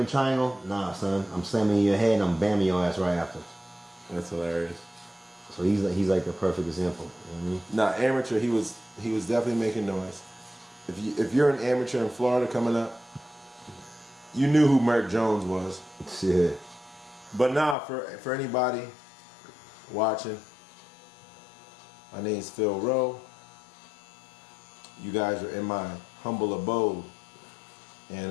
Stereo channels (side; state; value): right; drops out; at 17.8 s